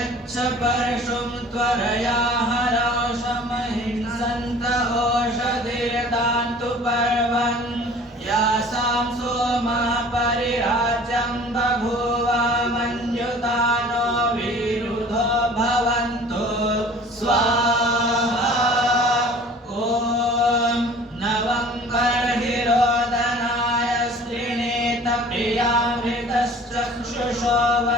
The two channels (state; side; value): normal; both; correlation 0.47